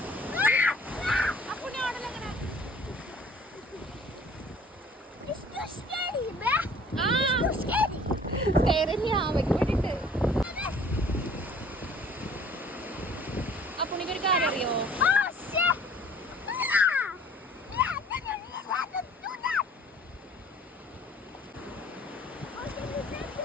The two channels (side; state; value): both; normal; correlation 0.52